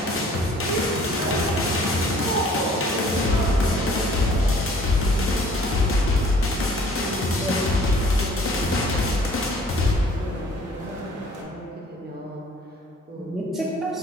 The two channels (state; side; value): normal; both; correlation 0.54